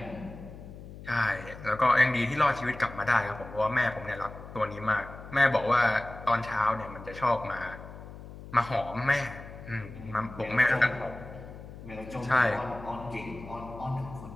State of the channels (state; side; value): noise; left; hum, 14 dB below the sound